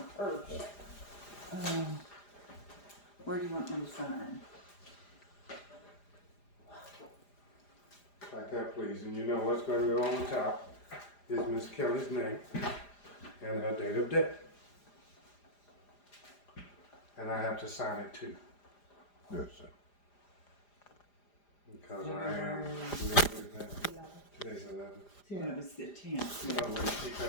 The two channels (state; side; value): late; right; 4.9 ms